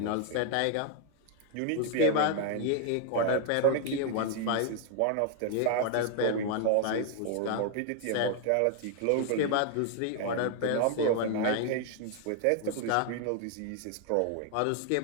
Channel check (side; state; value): both; different; correlation 0.00